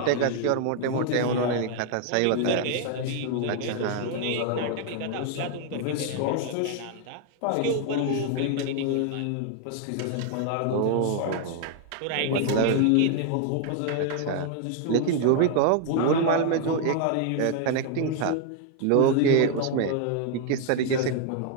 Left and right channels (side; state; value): both; different; correlation 0.00